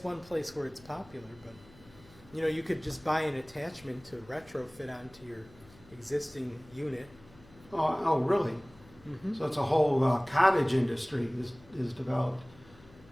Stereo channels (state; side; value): noise; left; hum, 24 dB below the sound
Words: one place where it's popular, but you know, you could just buy an attachment to retrofit onto your existing unit. Oh, really? Mm-hmm. So it's a whole cottage industry is developed.